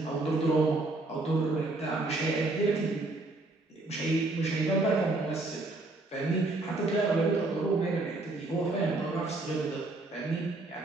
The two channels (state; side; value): quieter; left; 3.0 dB